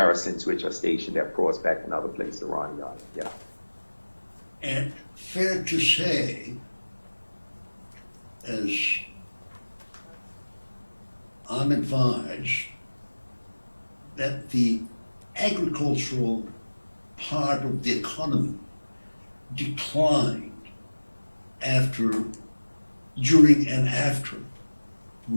which are stationed at Prospect and other places around the island. Yeah. And fair to say, as I'm advised, that the agricultural part of the economy declined during and after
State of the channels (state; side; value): inverted; both; correlation -1.00